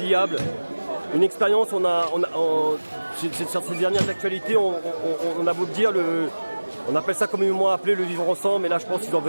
Une expérience, sur ces dernières actualités, on a beau le dire, on appelle ça communément appelé le vivre ensemble, mais là je pense qu'ils ont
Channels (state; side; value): inverted; both; correlation -1.00